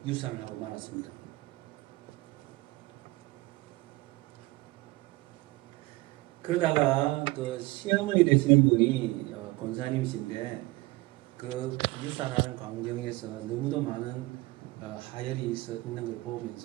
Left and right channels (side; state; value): left; quieter; 21.2 dB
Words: 유산을 하고 말았습니다. 그러다가 그 시어머니 되시는 분이 권사님이신데 그 유산하는 광경에서 너무도 많은 하혈이 있는 걸